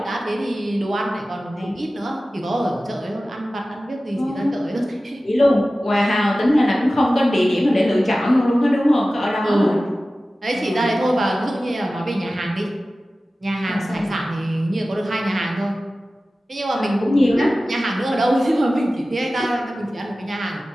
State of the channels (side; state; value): both; normal; correlation 0.96